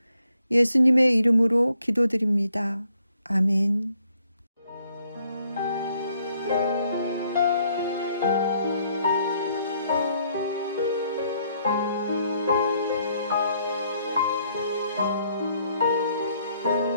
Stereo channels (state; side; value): inverted; both; correlation -0.71